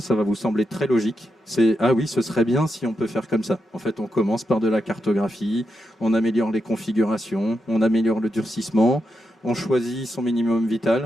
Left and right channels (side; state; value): both; normal; correlation 0.85